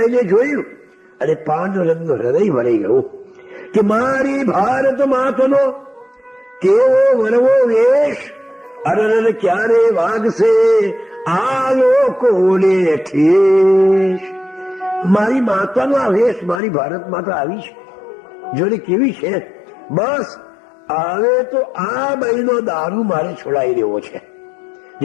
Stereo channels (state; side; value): drops out; right; at 16.6 s